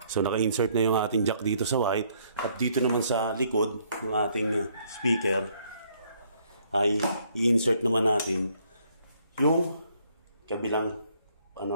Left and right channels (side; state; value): both; inverted; correlation -0.67